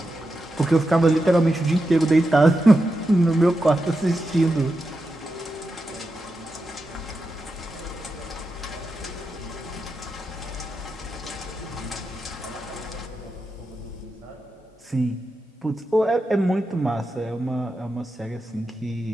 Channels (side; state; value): both; normal; correlation 0.88